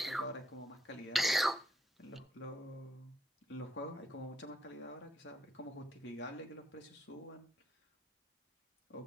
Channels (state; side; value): normal; both; correlation 0.76